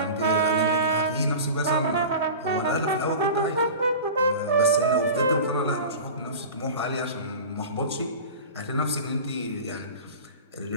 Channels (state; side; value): inverted; both; correlation -0.34